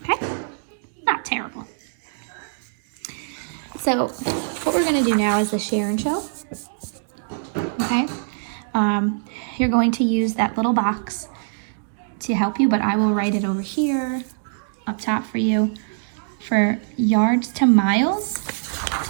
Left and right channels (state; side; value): silent; left; digital silence